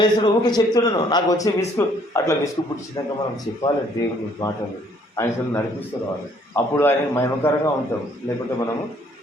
చేస్తుండో ఊకే చెప్తున్నాను. నాకు వచ్చే అట్లా విసుగు పుట్టించినాక మనం చెప్పాలి దేవుని మాటలు, ఆయన నడిపిస్తూ రావాలి. అప్పుడు ఆయన మహిమకరంగా ఉంటాం. లేకుంటే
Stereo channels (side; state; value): both; normal; correlation 0.63